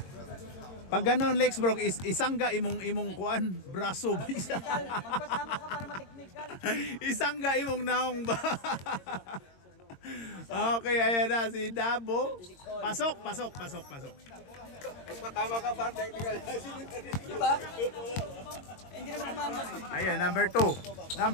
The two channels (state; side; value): late; right; 22 ms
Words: Pag ganon, Lex Brock, isangga imong kuan, braso ba isa? Magpatama ka para mateknikal. Isangga imong naong ba? Okay, ayan na si Dabo. Pasok. Magpatama ka para technical. Di ba? Hindi naman tumama. Ayan, number 2